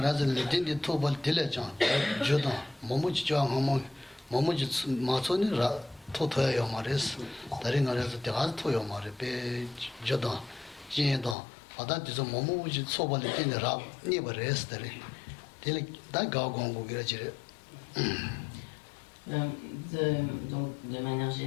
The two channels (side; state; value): right; drops out; at 11.4 s